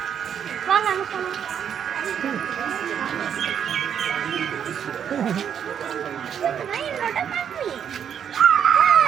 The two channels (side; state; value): left; quieter; 8.4 dB